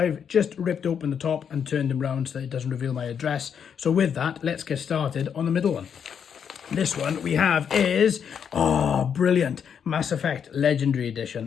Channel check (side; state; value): right; quieter; 7.6 dB